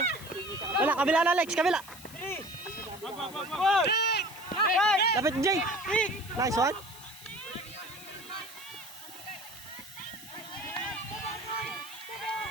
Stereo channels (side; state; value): left; noise; hiss, 17 dB below the sound